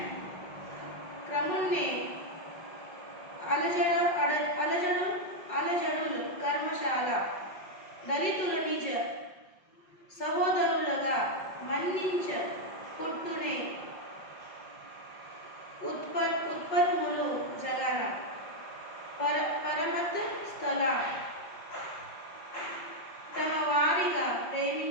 క్రమున్నే అలజడులు కర్మశాల దళితుల నిజ సహోదరులుగా మన్నించ పుట్టునే ఉత్పత్ములు జగన పరమత స్థల తమ వారిగా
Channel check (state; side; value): late; right; 5.5 ms